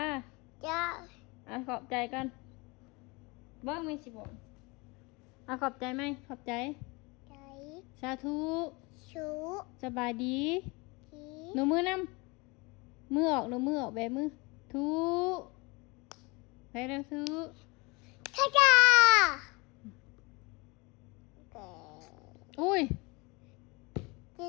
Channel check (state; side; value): quieter; right; 26.6 dB